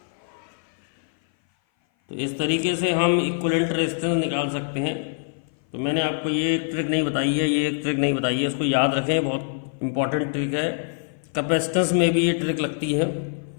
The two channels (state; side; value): silent; right; 57 dB below the other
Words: तो इस तरीके से हम इक्विवेलेंट रेजिस्टेंस निकाल सकते हैं। तो मैंने आपको ये एक ट्रिक नहीं बताई है, ये एक ट्रिक नहीं बताई है, इसको याद रखें, बहुत इंपॉर्टेंट ट्रिक है। कैपेसिटेंस में भी ये ट्रिक लगती है